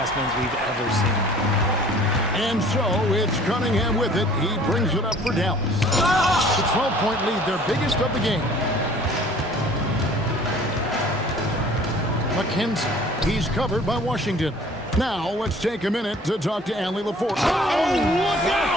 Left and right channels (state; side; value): normal; both; correlation 0.51